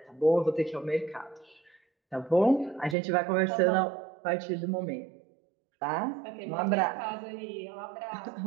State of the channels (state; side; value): drops out; left; at 3.0 s